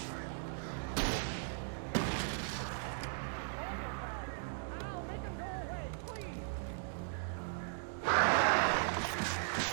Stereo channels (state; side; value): silent; left; digital silence